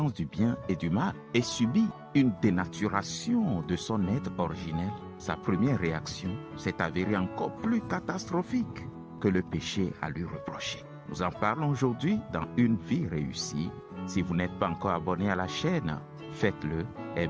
du bien et du mal et subi une dénaturation de son être originel. Sa première réaction s'est avérée encore plus catastrophique que le péché à lui reprocher. Nous en parlons aujourd'hui dans Une vie réussie. Si vous n'êtes pas encore abonné à la chaîne, faites-le,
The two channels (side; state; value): both; identical; correlation 1.00